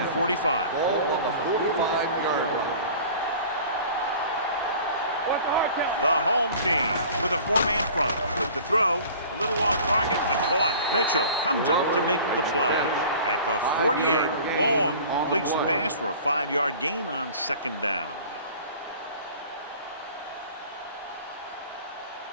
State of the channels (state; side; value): inverted; both; correlation -0.44